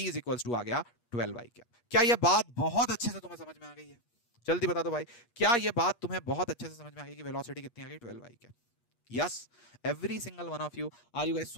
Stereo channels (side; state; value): right; late; 8.4 ms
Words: two आ गया 12i कैप। क्या यह बात बहुत अच्छे से तुम्हें समझ में आ गई है? जल्दी बता दो भाई, क्या यह बात तुम्हें बहुत अच्छे से समझ में आ गई कि वेलोसिटी कितनी आ गई, 12i cap? Yes, every single one of you, are you guys